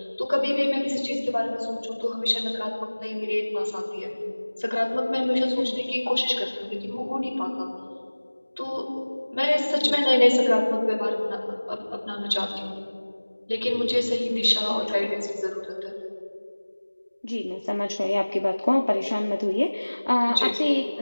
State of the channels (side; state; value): both; inverted; correlation -1.00